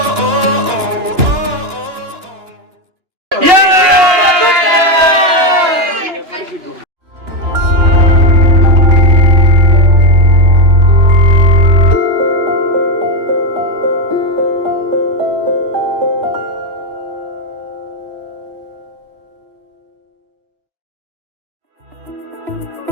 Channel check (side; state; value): left; late; 2.9 ms